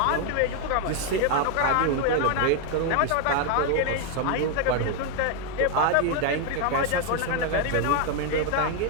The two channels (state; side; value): different; both; correlation 0.01